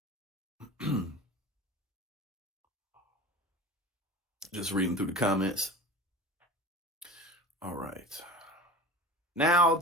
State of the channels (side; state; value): both; normal; correlation 0.35